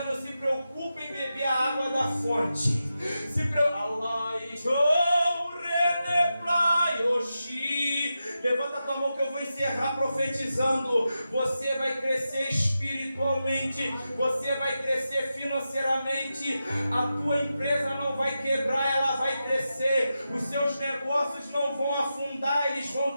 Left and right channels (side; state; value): both; inverted; correlation -0.90